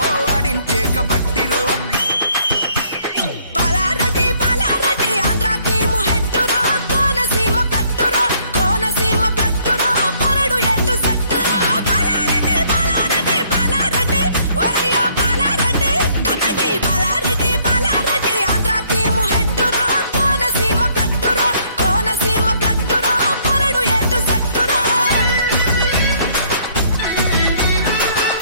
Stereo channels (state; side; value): inverted; both; correlation -0.64